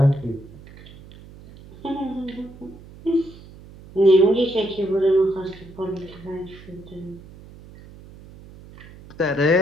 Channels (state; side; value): noise; right; hum, 20 dB below the sound